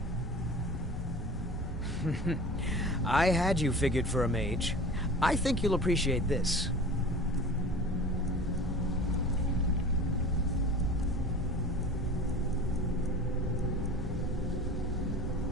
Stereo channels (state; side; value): normal; both; correlation 0.38